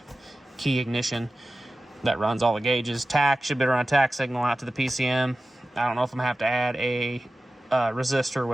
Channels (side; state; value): both; normal; correlation 0.95